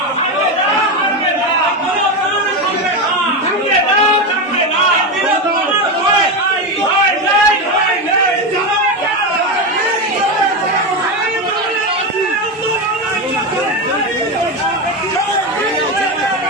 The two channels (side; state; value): both; normal; correlation 0.14